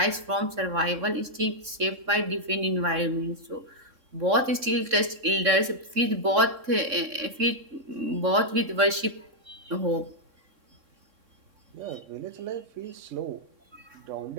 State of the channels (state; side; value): late; left; 3.6 ms